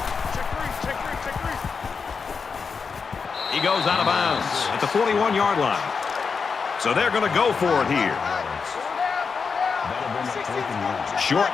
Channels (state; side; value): quieter; right; 5.4 dB